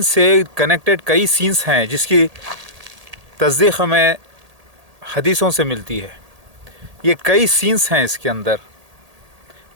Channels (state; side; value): late; left; 1.8 ms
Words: से कनेक्टेड कई सीन्स हैं जिसकी तस्दीक़ हमें हदीसों से मिलती है। ये कई सीन्स हैं इसके अंदर।